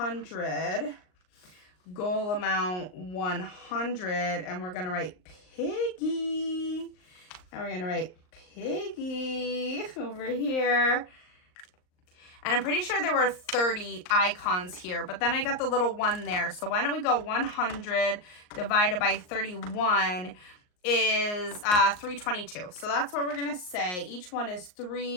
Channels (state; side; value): late; right; 38 ms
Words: Goal amount 100. And we're going to write Piggy. And we're going to write Piggy over here. And I'm pretty sure there were 30 icons here, but then I got the little one there. So why don't we go 100 divided by 31 is 322. So that's what we're going to say. Each one is